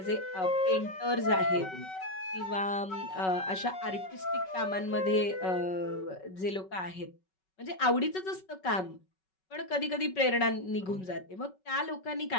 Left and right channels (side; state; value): right; late; 5.3 ms